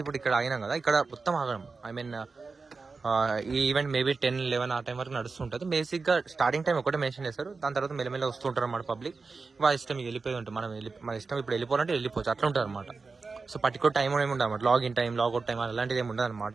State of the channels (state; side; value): quieter; left; 4.3 dB